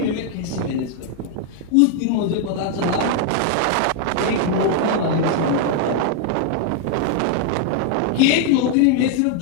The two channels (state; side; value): different; both; correlation 0.00